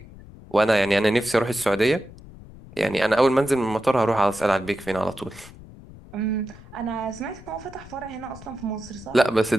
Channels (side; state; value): left; noise; rumble, 19 dB below the sound